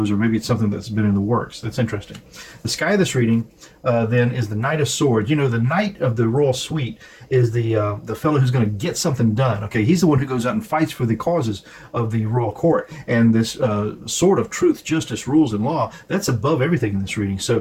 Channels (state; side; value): identical; both; correlation 1.00